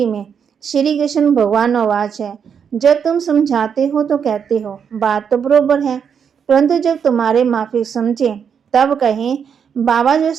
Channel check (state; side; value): quieter; left; 7.2 dB